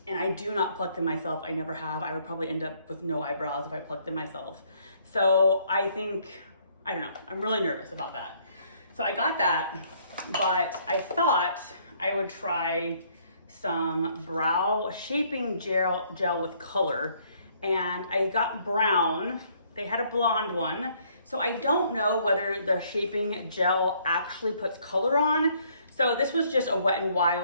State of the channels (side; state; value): both; inverted; correlation -0.65